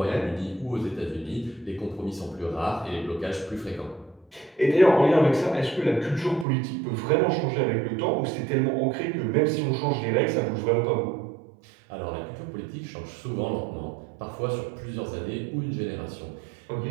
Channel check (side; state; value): left; drops out; at 6.5 s